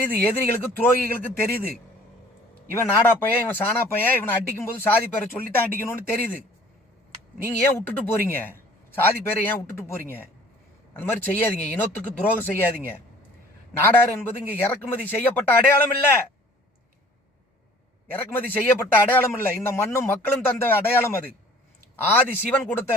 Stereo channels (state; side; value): normal; both; correlation 0.52